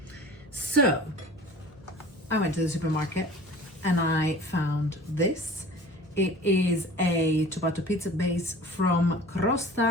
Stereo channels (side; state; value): both; normal; correlation 0.43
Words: So I went to the supermarket and I found this. It is a ciabatta pizza base from